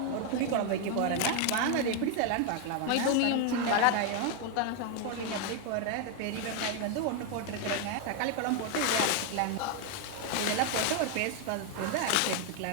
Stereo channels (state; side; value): different; both; correlation 0.01